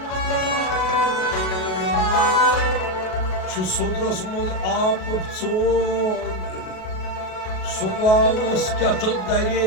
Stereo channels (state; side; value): late; right; 37 ms